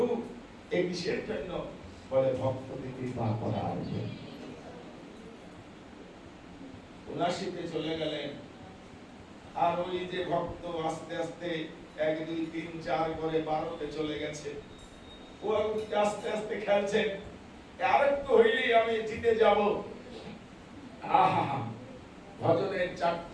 এই কিসের জন্য? বলে ভক্তকে কৃপা করার জন্য। 79 চলে গেলেন, আর ওই যে ভক্ত আস্তে আস্তে 1 2 3 4 করে 12তে চলে গেছে। ও আস্তে আস্তে খেলছেন, আরেকটু হইলেই আমি জিতে যাব। আহা, ভজনের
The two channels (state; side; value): identical; both; correlation 1.00